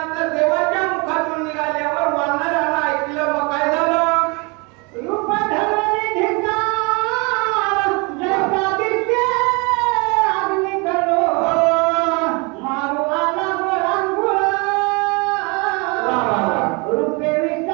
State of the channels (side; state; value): left; quieter; 29.7 dB